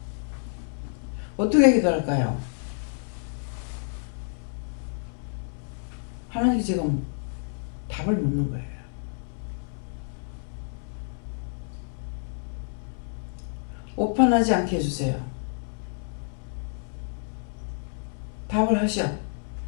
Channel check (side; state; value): right; silent; 59 dB below the other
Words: 어떻게 기도할까요? 하나님께 지금 답을 묻는 거예요. 오판하지 않게 해주세요. 답을 하셔.